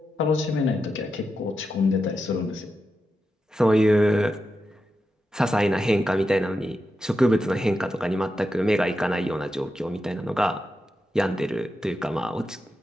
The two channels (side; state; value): both; normal; correlation 0.88